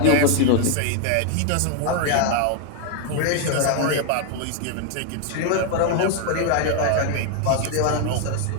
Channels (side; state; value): both; different; correlation 0.01